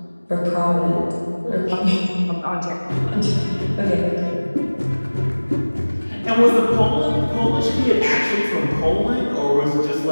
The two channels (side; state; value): both; inverted; correlation -1.00